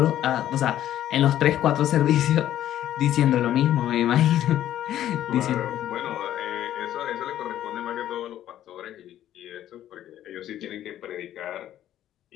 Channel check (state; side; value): quieter; right; 12.1 dB